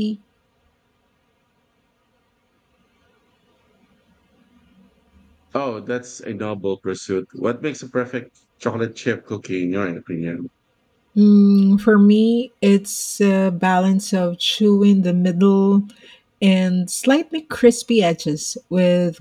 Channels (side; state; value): both; identical; correlation 1.00